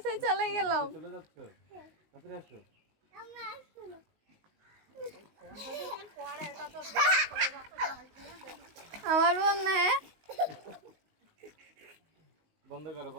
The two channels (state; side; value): late; left; 19 ms